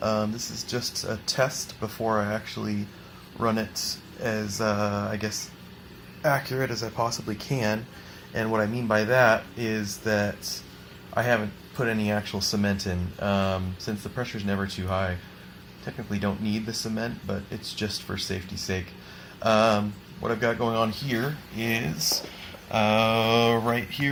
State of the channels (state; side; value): identical; both; correlation 1.00